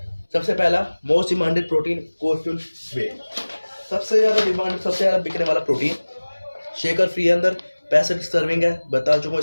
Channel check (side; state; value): both; inverted; correlation -1.00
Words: सबसे पहला मोस्ट डिमांडेड प्रोटीन कोरफ्यूल वे, सबसे ज़्यादा डिमांड, सबसे ज़्यादा बिकने वाला प्रोटीन शेकर फ्री है, अंदर 65 सर्विंग है, बता चुका हूँ